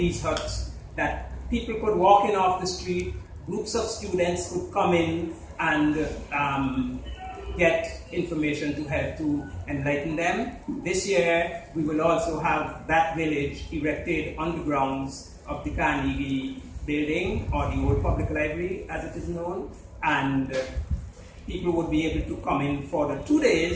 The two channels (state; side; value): identical; both; correlation 1.00